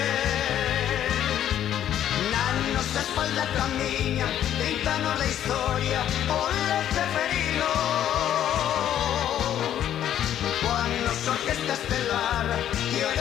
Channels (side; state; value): right; quieter; 10.8 dB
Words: Na nosa espalda camiñan 30 anos de historia, ole Ceferino. Coa nosa orquesta estelar e a